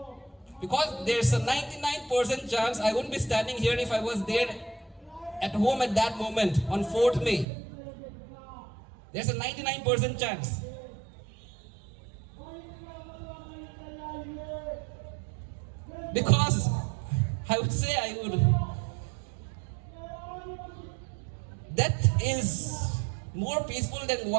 Because there's a 99% chance I wouldn't be standing here if I was there at home at that moment on 4th May. There's a 99% chance. Because I would say death is more peaceful than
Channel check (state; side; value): drops out; left; at 7.5 s